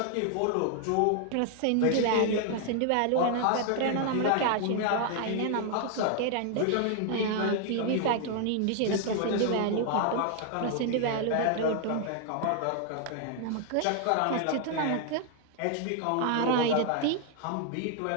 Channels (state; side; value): different; both; correlation 0.00